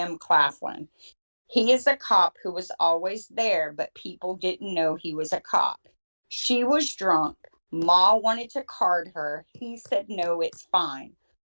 Claflin. He is a cop who was always there, but people didn't know he was a cop. She was drunk. Ma wanted to card her. He said, no, it's fine.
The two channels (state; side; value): inverted; both; correlation -1.00